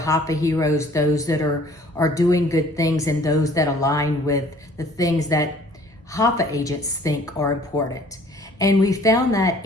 heroes, those that are doing good things and those that align with the things that HAFA agents think are important. And we found that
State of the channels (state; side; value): normal; both; correlation 0.54